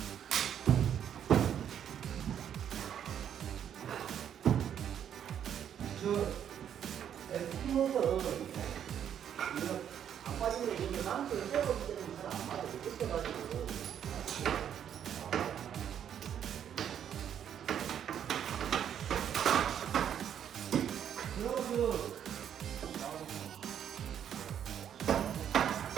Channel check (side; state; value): left; quieter; 9.2 dB